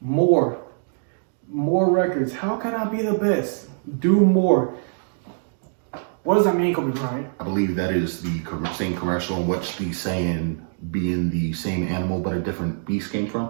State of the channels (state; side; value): silent; left; digital silence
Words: More records. How can I be the best? Do more. What does that mean, Kobe Bryant? I believe that is the same commercial in which the saying being the same animal but a different beast came from.